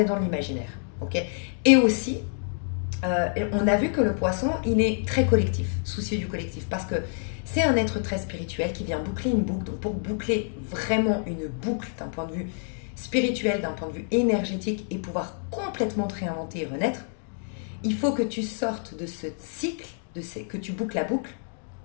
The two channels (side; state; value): right; silent; digital silence